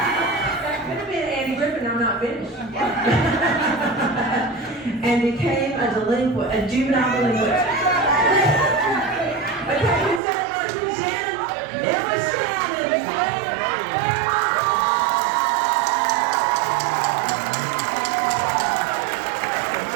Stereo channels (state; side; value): drops out; left; at 10.2 s